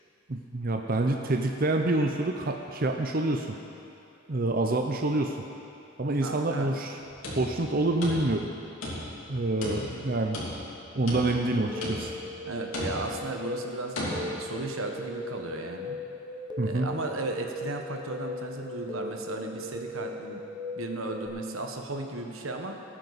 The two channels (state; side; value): normal; both; correlation 0.46